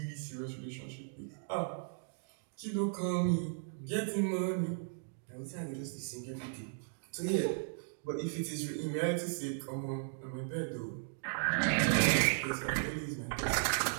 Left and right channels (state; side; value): silent; left; digital silence